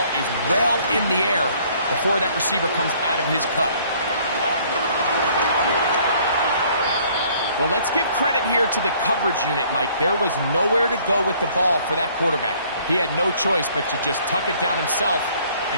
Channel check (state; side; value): inverted; both; correlation -0.59